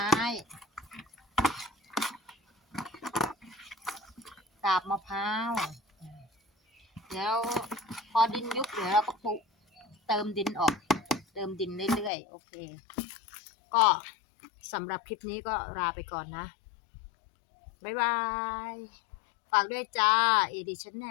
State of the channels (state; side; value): drops out; right; at 12.1 s